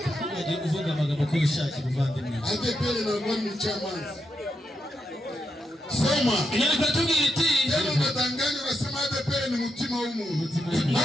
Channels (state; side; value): normal; both; correlation 0.84